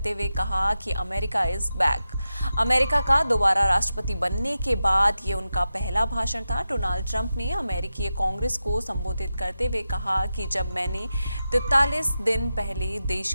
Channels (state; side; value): inverted; both; correlation -0.91